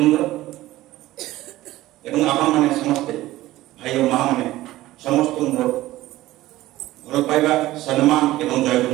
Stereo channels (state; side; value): quieter; left; 16.4 dB